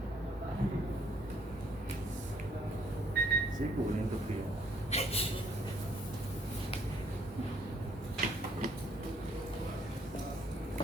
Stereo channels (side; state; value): both; normal; correlation 0.66